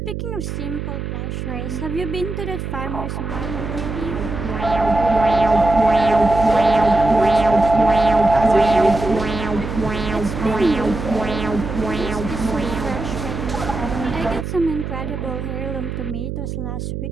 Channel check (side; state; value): right; noise; hum, 5 dB below the sound